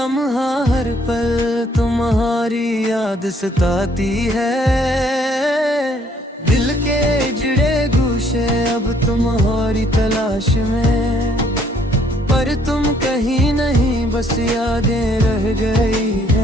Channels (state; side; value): normal; both; correlation 0.64